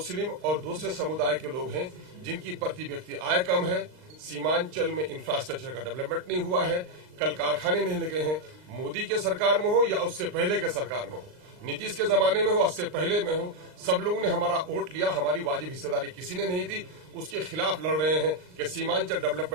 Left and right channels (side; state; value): left; late; 39 ms